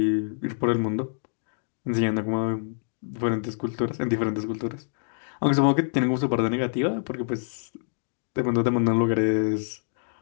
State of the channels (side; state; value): right; silent; digital silence